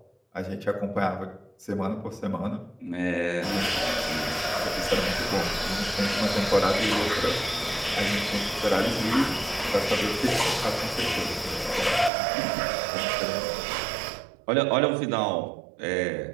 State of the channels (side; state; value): left; drops out; at 12.1 s